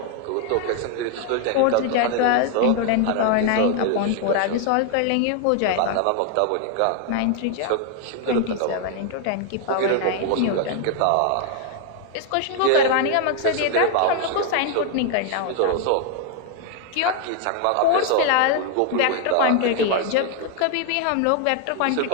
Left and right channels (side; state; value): both; different; correlation 0.01